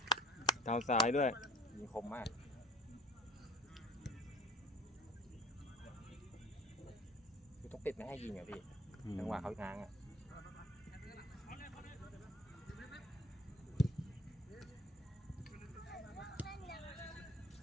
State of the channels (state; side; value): normal; both; correlation 0.46